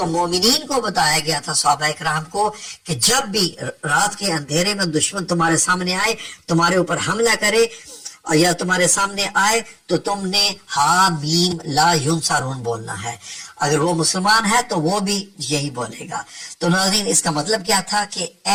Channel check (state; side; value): identical; both; correlation 1.00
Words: मोमिनीन को बताया गया था सहाबा इकराम को कि जब भी रात के अंधेरे में दुश्मन तुम्हारे सामने आए, तुम्हारे ऊपर हमला करे, या तुम्हारे सामने आए, तो तुमने हा मीम ला युनसरून बोलना है। अगर वो मुसलमान है तो वो भी यही बोलेगा। तो नाज़रीन, इसका मतलब क्या था कि